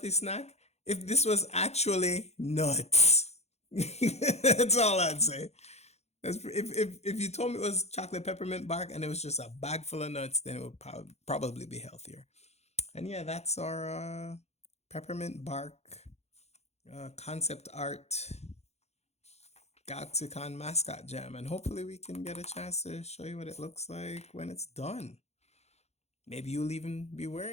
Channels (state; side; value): late; right; 0.31 ms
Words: snack? If this was actually nuts. That's all I'd say. If you told me it was chocolate peppermint bark and it was just a bag full of nuts, then it would probably be healthier. And yeah, that's our peppermint bark concept art GalaxyCon mascot jam, and hopefully we can get a chance to show you what it looks like when it's done. Maybe you'll even be